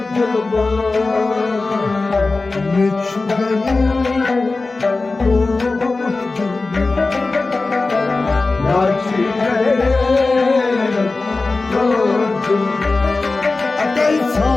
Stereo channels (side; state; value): right; quieter; 3.6 dB